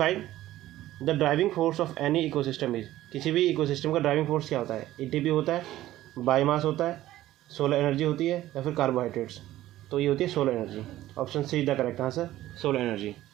the driving force of any ecosystem is. किसी भी इकोसिस्टम का ड्राइविंग फोर्स क्या होता है? ATP होता है, बायोमास होता है, सोलर एनर्जी होती है या फिर कार्बोहाइड्रेट्स। तो ये होती है solar energy. Option C the correct answer, solar energy.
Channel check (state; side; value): quieter; left; 14.7 dB